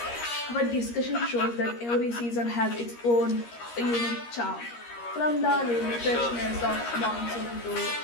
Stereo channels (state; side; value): late; right; 13 ms